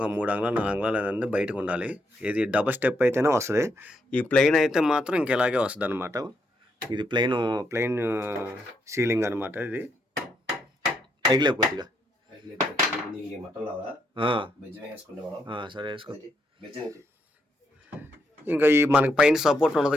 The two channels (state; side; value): normal; both; correlation 0.78